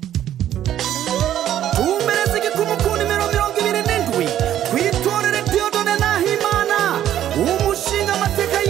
Umereze gikumukuni mirongo ibiri n'indwi kwitorere Dieudonné Nahimana umushinga amateka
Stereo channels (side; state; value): left; quieter; 11.4 dB